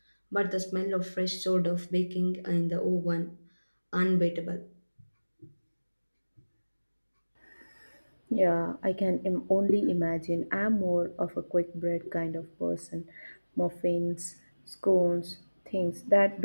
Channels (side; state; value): both; inverted; correlation -1.00